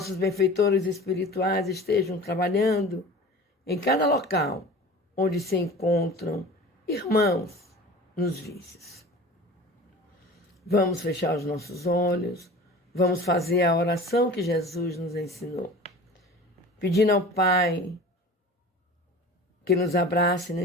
benfeitores espirituais estejam trabalhando em cada local onde se encontram irmãos nos vícios. Vamos fechar os nossos olhos, vamos fazer a oração que Jesus nos ensinou, pedindo ao Pai que nos abrace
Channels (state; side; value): normal; both; correlation 0.38